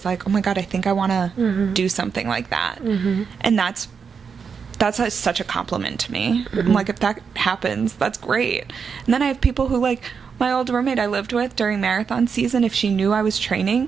like, oh my God, I think I want to do something like that. And that's such a compliment to me. I'm like, if that happens, that's great. And then I have people who, like, my old roommate I lived with during marathon season, if she knew I was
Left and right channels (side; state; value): left; quieter; 6.1 dB